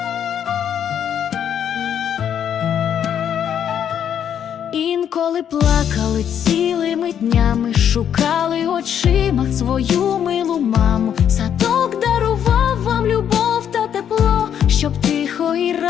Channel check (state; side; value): quieter; right; 9.0 dB